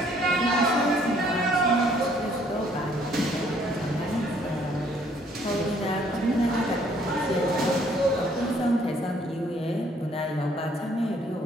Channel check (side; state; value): both; normal; correlation 0.63